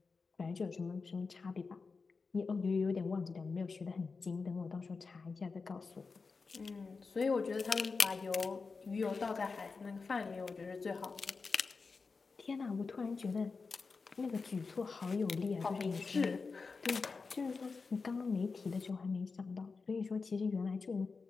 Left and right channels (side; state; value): right; quieter; 4.5 dB